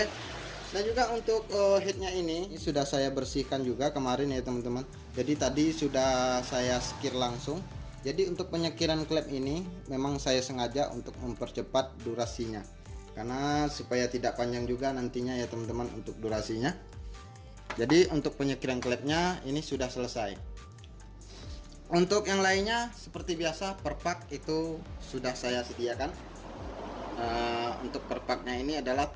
Dan juga untuk headnya ini sudah saya bersihkan juga kemarin ya teman-teman. Jadi tadi sudah saya skir langsung. Jadi untuk penyekiran klep ini memang saya sengaja untuk mempercepat durasinya, karena supaya tidak panjang juga nantinya ya teman-teman untuk durasinya. Jadi untuk penyekiran klepnya ini sudah selesai. Untuk yang lainnya seperti biasa perpak itu sudah saya sediakan. Untuk perpaknya ini adalah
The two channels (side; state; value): both; identical; correlation 1.00